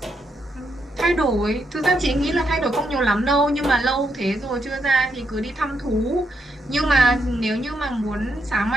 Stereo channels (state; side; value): normal; both; correlation 0.79